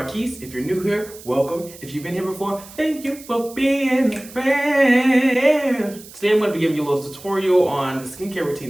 If you're new here, welcome. If you've been here before, thank you for being a friend. Today I'm going to be giving you a little tutorial on the skincare routine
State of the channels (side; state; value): right; noise; hiss, 18 dB below the sound